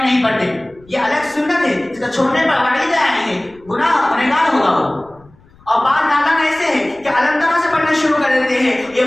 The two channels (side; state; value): left; noise; rumble, 28 dB below the sound